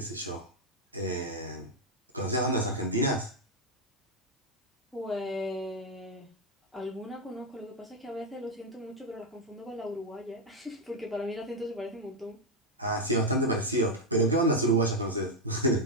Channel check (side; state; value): both; normal; correlation 0.03